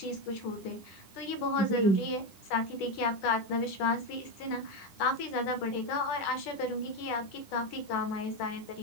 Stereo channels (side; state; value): right; late; 10 ms